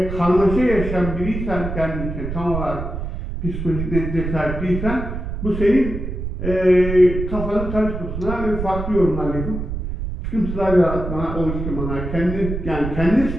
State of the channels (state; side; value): noise; right; rumble, 5 dB below the sound